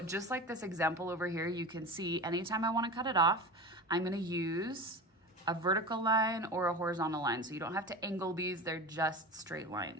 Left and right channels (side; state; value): both; normal; correlation 0.30